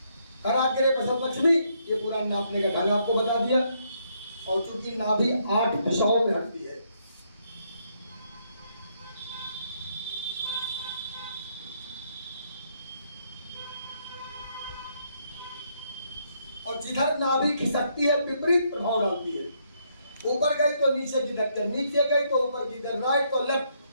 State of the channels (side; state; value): both; inverted; correlation -0.73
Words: कराग्रे प्रसव लक्ष्मी, ये पूरा नापने का ढंग आपको बता दिया। और चूंकि नाभि 8 दिशाओं में हटती है, और जिधर नाभि खिसकती है विपरीत प्रभाव डालती है। ऊपर गई तो नीचे की धक्कर, नीचे गई तो ऊपर की तरफ, राइट तो